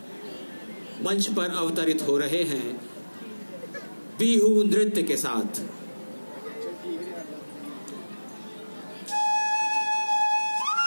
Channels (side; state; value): both; inverted; correlation -1.00